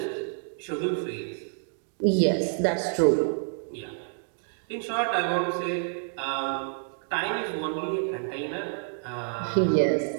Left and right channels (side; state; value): left; silent; digital silence